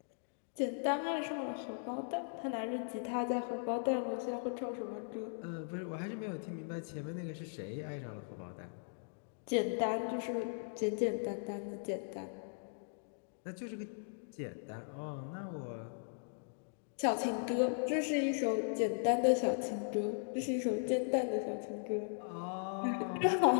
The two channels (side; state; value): right; silent; digital silence